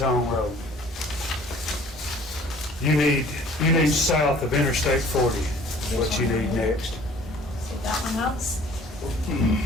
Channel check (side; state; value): both; normal; correlation 0.52